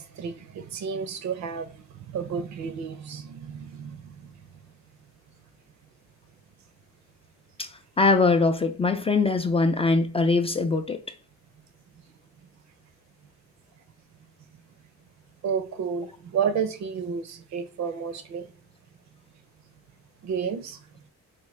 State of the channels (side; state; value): both; normal; correlation 0.37